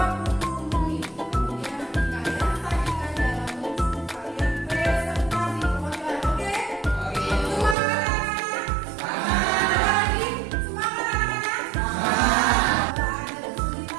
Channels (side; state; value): left; drops out; at 7.8 s